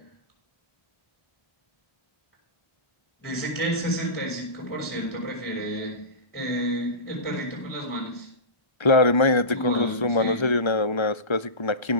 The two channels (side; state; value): right; late; 1.3 ms